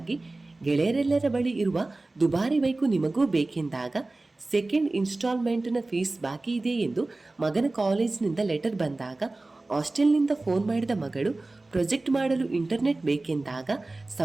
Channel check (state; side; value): quieter; left; 3.1 dB